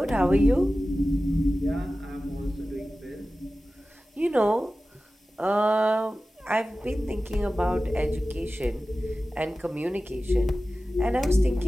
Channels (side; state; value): both; normal; correlation 0.95